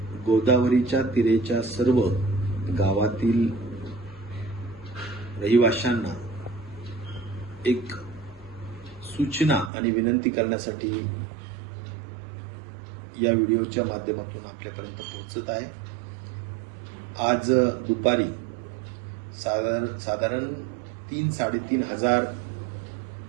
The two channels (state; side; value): drops out; left; at 9.7 s